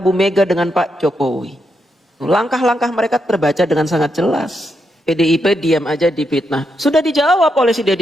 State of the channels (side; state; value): both; normal; correlation 0.82